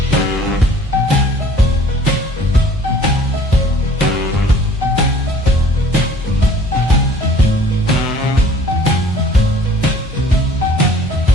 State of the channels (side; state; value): both; normal; correlation 0.53